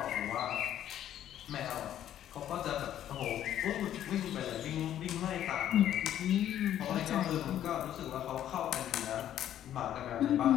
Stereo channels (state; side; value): quieter; right; 11.2 dB